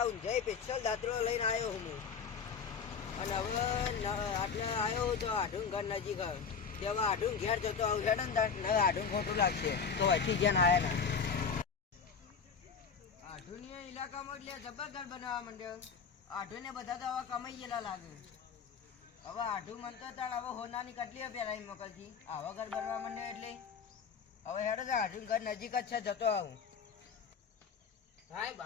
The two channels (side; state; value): right; quieter; 6.2 dB